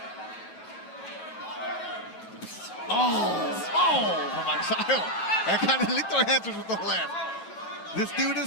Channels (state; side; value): late; right; 9.0 ms